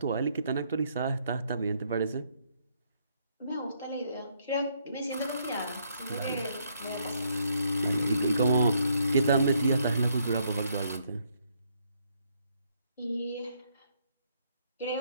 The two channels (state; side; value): inverted; both; correlation -0.72